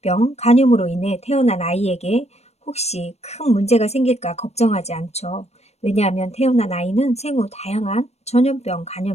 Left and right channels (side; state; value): right; late; 0.31 ms